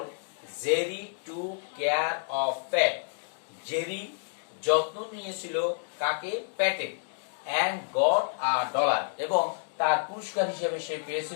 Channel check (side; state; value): right; silent; digital silence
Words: Jerry took care of Pat, Jerry যত্ন নিয়েছিল কাকে, প্যাটে, এন্ড গট আ ডলার, এবং তার পুরস্কার হিসেবে সে